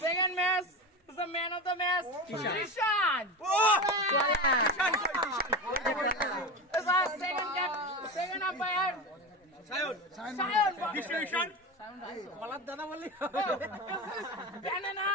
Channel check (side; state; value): both; normal; correlation 0.23